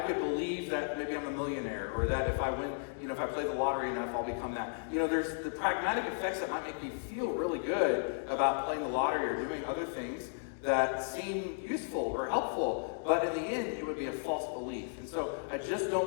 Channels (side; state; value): right; silent; digital silence